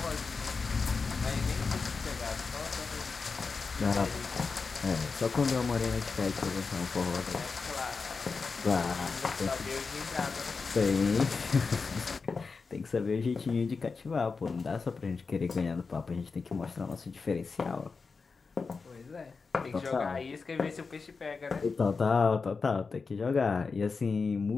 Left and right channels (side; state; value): right; quieter; 4.7 dB